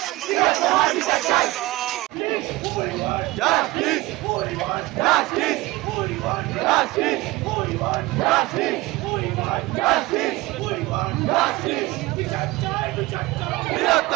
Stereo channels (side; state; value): left; quieter; 19.7 dB